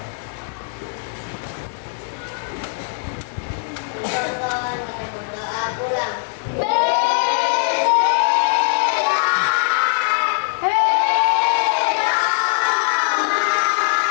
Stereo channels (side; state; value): right; silent; digital silence